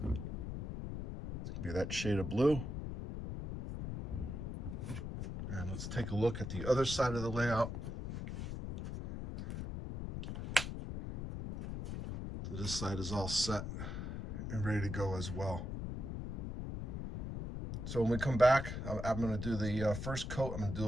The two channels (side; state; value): left; noise; rumble, 5 dB below the sound